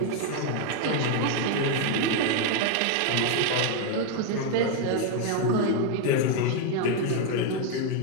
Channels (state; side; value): different; both; correlation 0.01